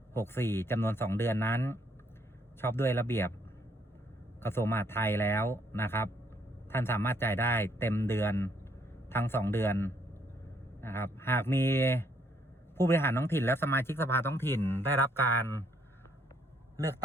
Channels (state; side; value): normal; both; correlation 0.69